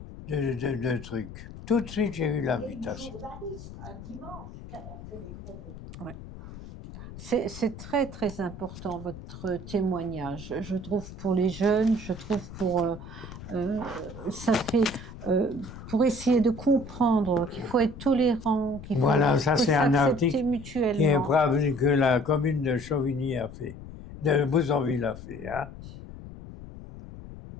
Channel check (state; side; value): noise; left; rumble, 13 dB below the sound